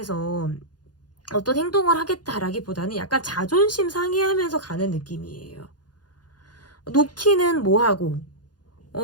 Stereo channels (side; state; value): right; late; 0.69 ms